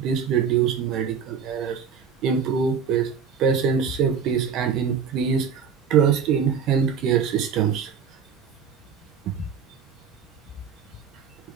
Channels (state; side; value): quieter; left; 6.8 dB